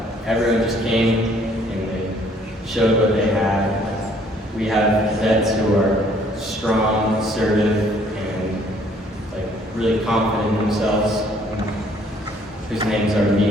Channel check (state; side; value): normal; both; correlation 0.61